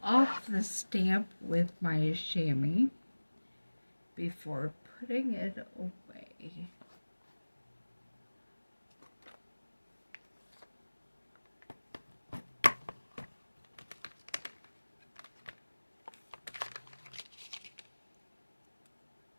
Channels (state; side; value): inverted; both; correlation -1.00